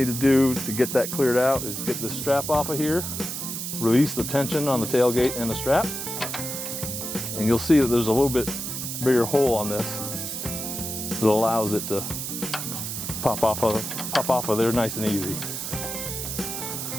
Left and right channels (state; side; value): noise; right; hiss, 5 dB below the sound